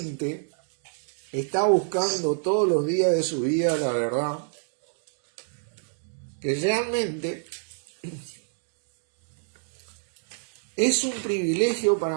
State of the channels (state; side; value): silent; left; digital silence